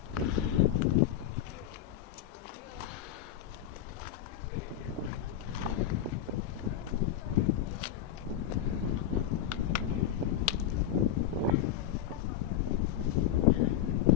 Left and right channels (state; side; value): quieter; right; 10.8 dB